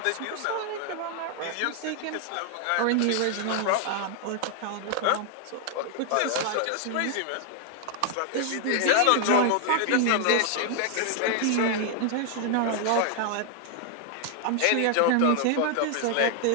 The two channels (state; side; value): different; both; correlation 0.00